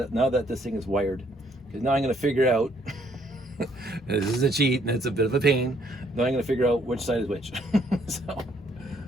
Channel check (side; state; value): both; normal; correlation 0.67